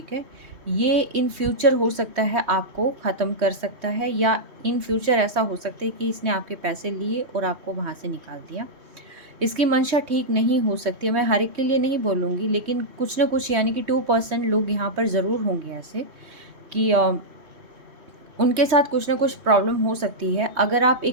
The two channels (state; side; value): late; left; 3.2 ms